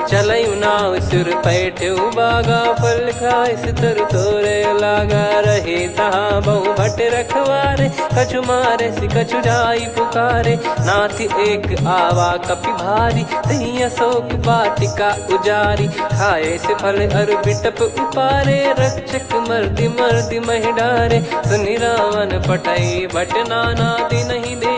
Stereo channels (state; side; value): identical; both; correlation 1.00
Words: चलऊ नाव सुर पैठऊ बागा, फल खाइस तरु तोरे लागा। रहे तहाँ बहु भट रखवारे, कछु मारे सि कछु जाई पुकारे। नाथ एक आवा कपि भारी, तही अशोक वाटिका उजारी। खाए से फल अरु बिटप उपारे, रक्षक मर्दि मर्दि महि डारे। सुनि रावण पटई भट नाना, नहीं